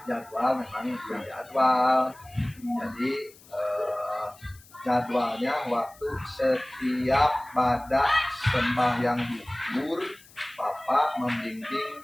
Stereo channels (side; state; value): left; noise; hiss, 24 dB below the sound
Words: jadwal, memang jadwal. Jadi jadwalnya waktu setiap pada sembahyang zuhur Bapak